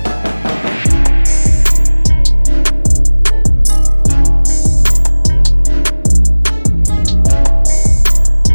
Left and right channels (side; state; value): both; inverted; correlation -1.00